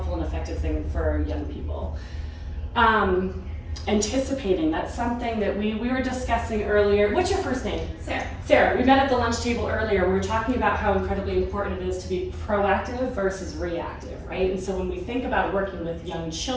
and effective thing for young people. Anticipating, that's something that we were discussing earlier. What's your first name? Sarah. Sarah, we met at the lunch table earlier. We were talking about how incredibly important it is to be proactive versus reactive, right? And so when we think about working with young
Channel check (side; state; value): both; identical; correlation 1.00